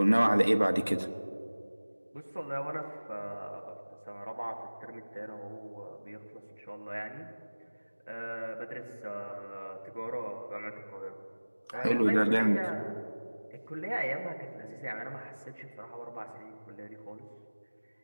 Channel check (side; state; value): both; inverted; correlation -1.00